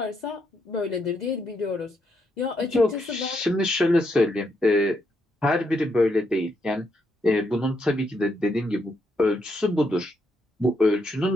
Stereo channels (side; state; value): both; normal; correlation 0.78